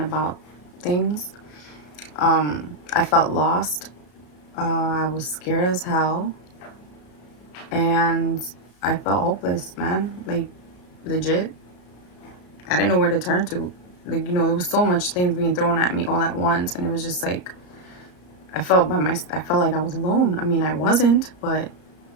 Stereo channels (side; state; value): right; late; 33 ms